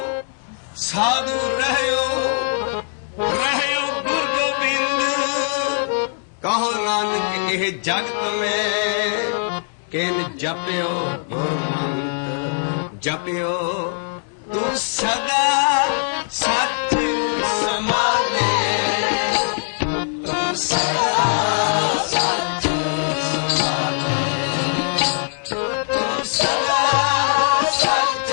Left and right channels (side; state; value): right; silent; digital silence